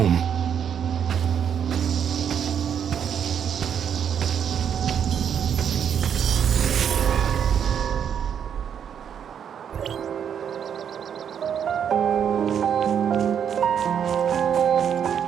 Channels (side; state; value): left; quieter; 8.3 dB